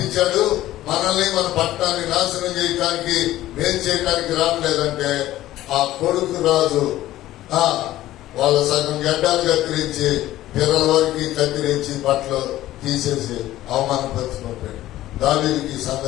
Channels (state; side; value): quieter; right; 14.8 dB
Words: మనల్ని మన పట్టణాన్ని నాశనం చేయడానికి మేలు చేయడానికి రావట్లేదంటే ఆ కొడుకు రాజు వాళ్ళ సగం గడ్డాలు కత్తిరించి పిల్లల వరకు కత్తిరించి బట్టలు తీసేసి అవమానపరుచుకుంటాడు. దావీదుకి ఈ